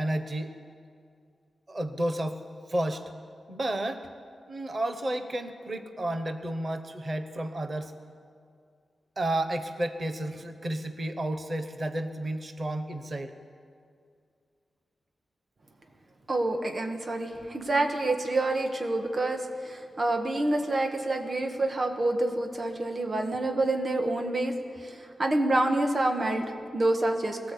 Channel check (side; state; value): both; normal; correlation 0.92